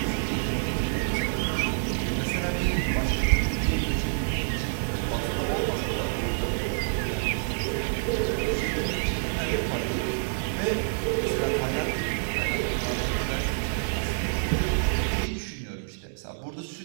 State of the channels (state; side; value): silent; left; digital silence